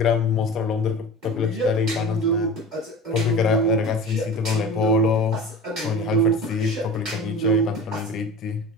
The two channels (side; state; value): both; normal; correlation 0.35